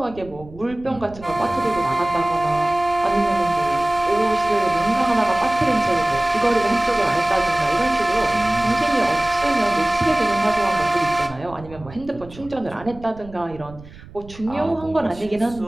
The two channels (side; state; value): right; noise; rumble, 19 dB below the sound